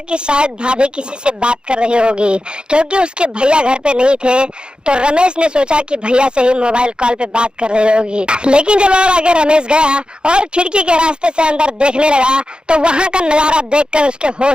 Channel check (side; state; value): left; late; 0.050 ms